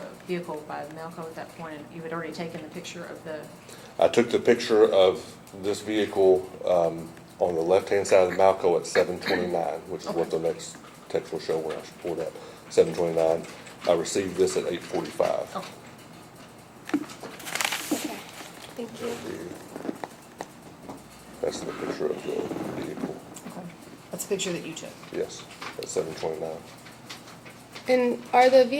vehicle by Malco at that point, and you had already taken the picture of the, I took the picture of this vehicle on the left-hand side of the Malco at 7:29, which is what the next text will show when I pull it up. 7:29. I received this at 8:45. oh, Okay, thank you. That's the picture of the vehicle. okay. That's a picture that you took. Yes, at 7:29. And are the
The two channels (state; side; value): identical; both; correlation 1.00